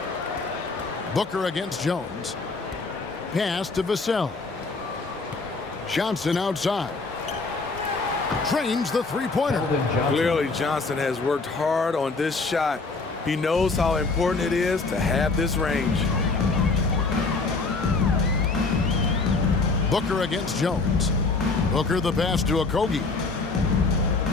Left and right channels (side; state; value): right; quieter; 3.9 dB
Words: Booker against Jones. Pass to Vassell. Johnson outside. Trains the three-pointer. Clearly, Johnson has worked hard on this shot. He knows how important it is to have this range. Booker against Jones. Booker the pass to Okogie.